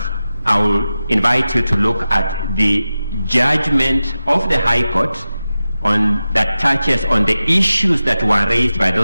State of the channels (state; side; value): inverted; both; correlation -0.93